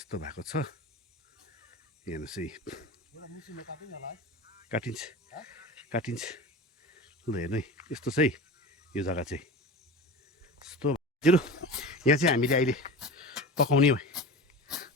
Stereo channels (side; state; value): both; normal; correlation 0.31